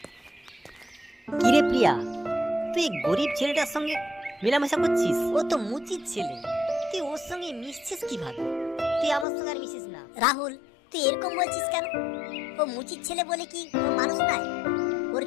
কিরে প্রিয়া, তুই গরিব ছেলেটার সঙ্গে মেলামেশা করছিস? ও তো মুচির ছেলে, তুই ওর সঙ্গে মিশছিস কিভাবে? তুই আমার সঙ্গে আর মিশিস না। রাহুল, তুই এরকম বলছিস কেন? ও মুচির ছেলে বলে কি ও মানুষ নয়? ওর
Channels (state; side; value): drops out; right; at 9.2 s